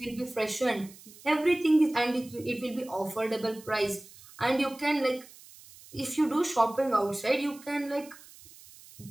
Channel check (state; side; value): noise; right; hiss, 21 dB below the sound